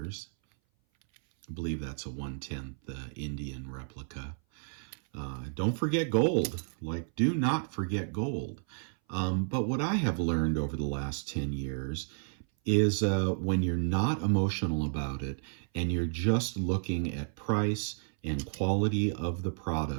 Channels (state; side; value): silent; left; 57 dB below the other